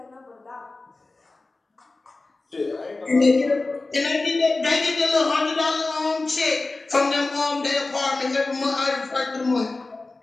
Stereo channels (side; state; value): right; quieter; 3.3 dB